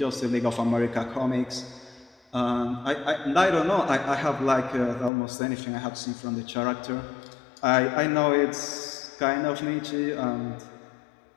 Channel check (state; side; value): drops out; right; at 5.1 s